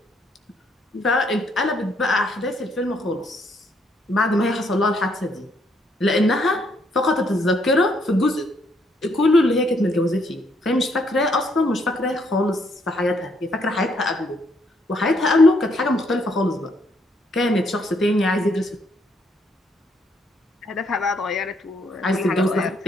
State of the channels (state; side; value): normal; both; correlation 0.71